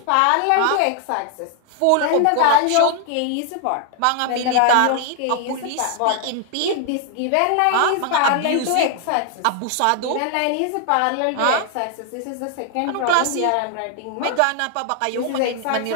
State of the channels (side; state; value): both; different; correlation 0.00